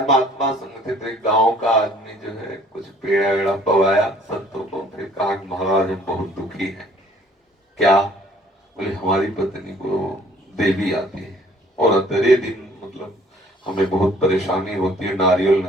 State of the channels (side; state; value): both; normal; correlation 0.57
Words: महात्मा संग थे, तो एक गांव का आदमी जो है कुछ पेड़ा वेड़ा पवाया संतों को, फिर कहा महाराज हम बहुत दुखी हैं। क्या? बोले हमारी पत्नी को देवी आती है और अंतरे दिन मतलब हमें बहुत परेशानी होती है, नारियल न